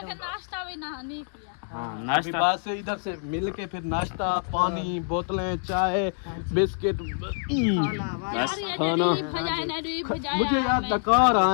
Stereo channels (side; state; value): right; silent; digital silence